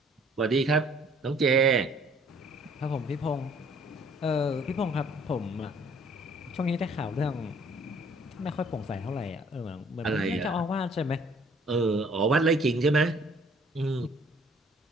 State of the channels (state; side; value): normal; both; correlation 0.58